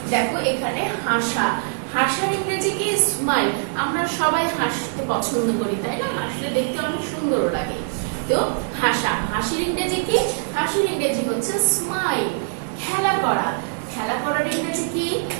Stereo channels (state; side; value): silent; left; digital silence